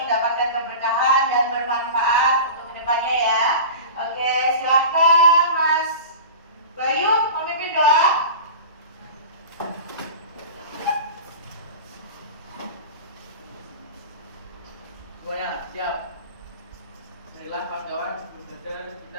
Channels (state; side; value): inverted; both; correlation -0.34